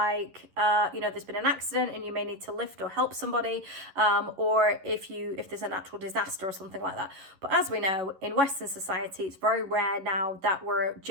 there's been an accident and you may need to lift or help somebody, or if there's a natural disaster or something like that. But as we know, in Western society, it's very rare now that we're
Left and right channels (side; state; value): left; late; 11 ms